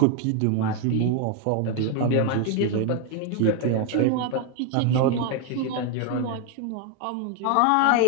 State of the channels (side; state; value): both; different; correlation 0.01